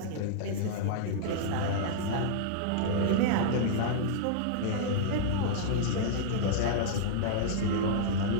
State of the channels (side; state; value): both; different; correlation -0.01